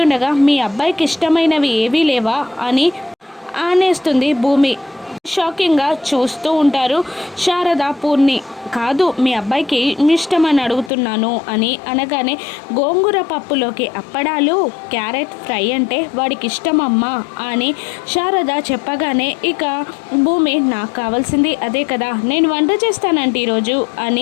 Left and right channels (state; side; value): drops out; right; at 10.9 s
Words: మీ అబ్బాయికి ఇష్టమైనవి ఏవీ లేవా అని అనేస్తుంది భూమి. షాకింగ్గా చూస్తూ ఉంటారు శారద పూర్ణి. కాదు, మీ అబ్బాయికి ఇష్టమని అడుగుతున్నాను అని అనగానే గోంగూర పప్పులోకి అప్పడాలు క్యారెట్ ఫ్రై అంటే వాడికి ఇష్టమమ్మా అని శారద చెప్పగానే ఇక భూమి నాకు కావాల్సింది అదే కదా, నేను వంట చేస్తానంటే ఈరోజు